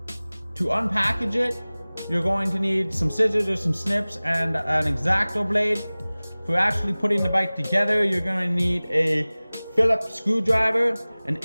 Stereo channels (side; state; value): both; inverted; correlation -0.99